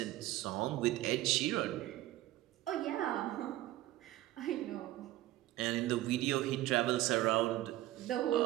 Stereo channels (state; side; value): quieter; left; 15.6 dB